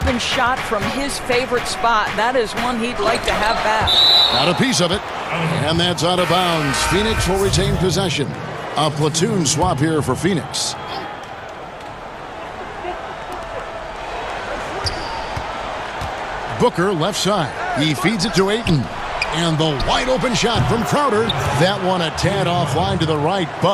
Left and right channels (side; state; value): both; identical; correlation 1.00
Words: shot from his favorite spot. That is one he'd like to have back. Got a piece of it. And that's out of bounds. Phoenix will retain possession. A platoon swap here for Phoenix. Booker left side. He feeds it to Ayton. And the wide open shot from Crowder. That one a tad offline to the right,